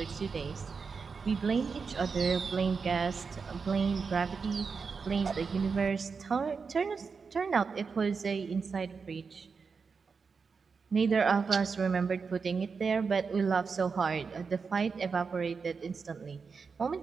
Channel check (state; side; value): quieter; left; 5.2 dB